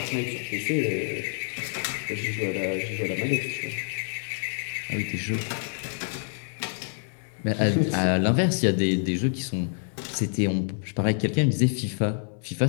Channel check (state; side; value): silent; right; 58 dB below the other